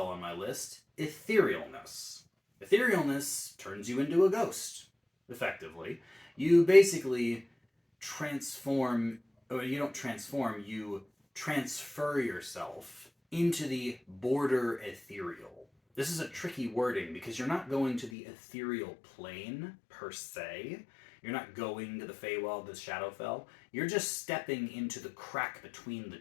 on my list, Etherealness. Etherealness turns you into a ghost, effectively. You basically transform, or you don't transform, you transfer yourself into the border ethereal. This is a tricky wording because you're not going to the ethereal plane per se. You're not going to the Feywild, the Shadowfell. You're just stepping into the crack between the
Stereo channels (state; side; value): drops out; right; at 18.1 s